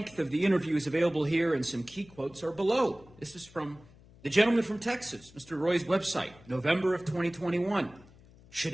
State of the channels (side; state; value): left; noise; hum, 24 dB below the sound